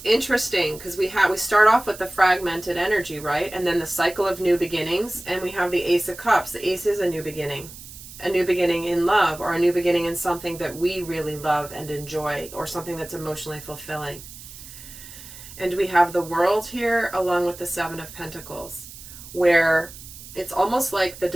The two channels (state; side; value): noise; right; hiss, 16 dB below the sound